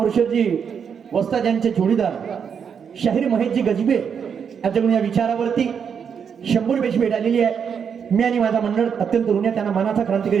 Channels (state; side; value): quieter; left; 7.1 dB